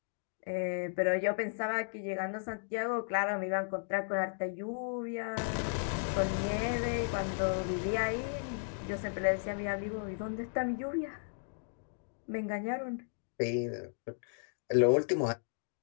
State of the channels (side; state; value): right; silent; digital silence